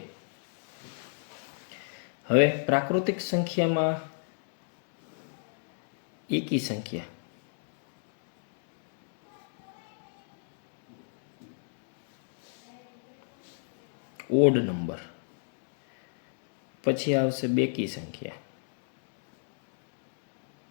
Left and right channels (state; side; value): silent; right; digital silence